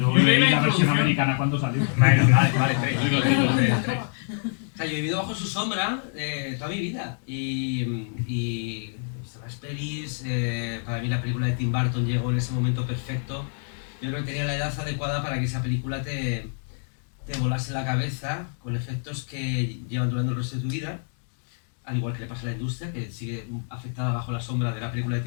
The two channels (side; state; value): right; silent; digital silence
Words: leí leí la la versión introducción. americana cuando salió. Vale, tres. O sea, yo he vivido bajo su sombra toda mi vida y he visto las pelis, para mí la película de Tim Burton llegó en ese momento perfecto. Yo creo que tenía la edad adecuada para que esa película te volase la cabeza con efectos que llevan durando el resto de tu vida, al igual que le pasa a la industria, que sigue afectada bajo la sombra de la película de